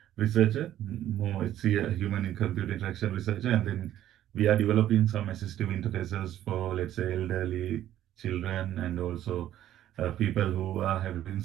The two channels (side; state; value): left; quieter; 12.2 dB